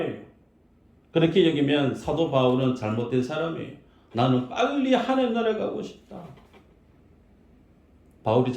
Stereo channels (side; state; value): both; identical; correlation 1.00